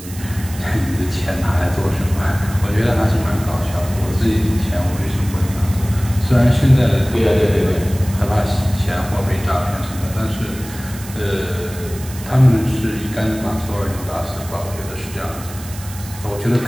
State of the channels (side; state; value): right; noise; hiss, 15 dB below the sound